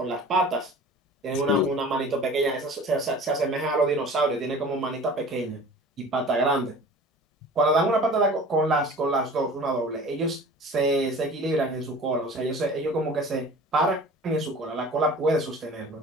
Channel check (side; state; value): both; normal; correlation 0.42